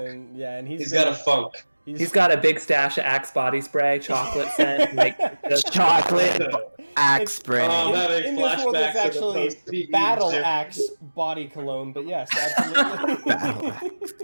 and- Yeah, and He's got a funk. He's got a big stash of Axe body spray, chocolate scent, like just Chocolate axe spray. Oh, that in this world, it's flashbacks to the actually post-PE Battle gym. Axe body cologne, but yes, absolutely. Battle axe.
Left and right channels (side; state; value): both; inverted; correlation -1.00